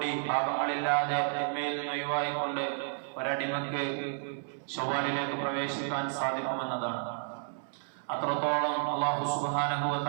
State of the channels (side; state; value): left; silent; 57 dB below the other